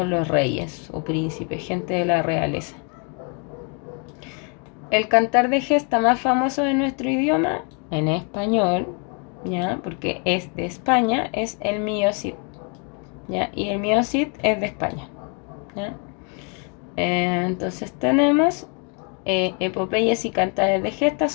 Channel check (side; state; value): right; quieter; 37.2 dB